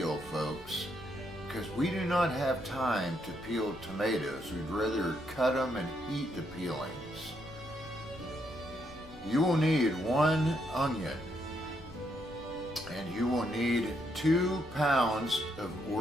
folks, because we do not have time to peel tomatoes. We'd rather cut them and eat the peelings. You will need 1 onion, and you will need 2 pounds of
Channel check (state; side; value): normal; both; correlation 0.76